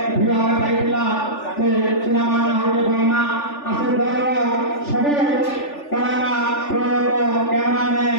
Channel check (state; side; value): late; right; 3.4 ms